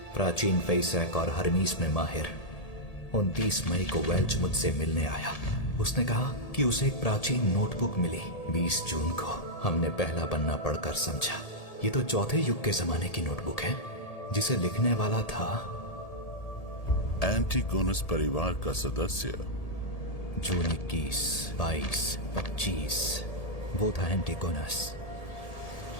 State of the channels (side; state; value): right; late; 1.8 ms